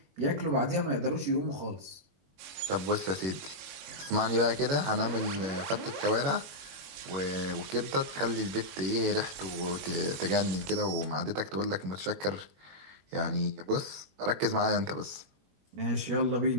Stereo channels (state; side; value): late; left; 21 ms